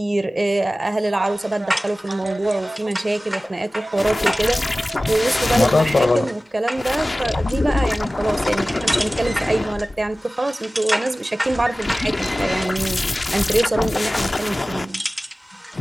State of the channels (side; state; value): both; normal; correlation 0.97